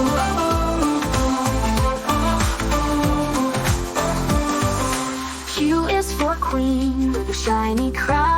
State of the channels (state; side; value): identical; both; correlation 1.00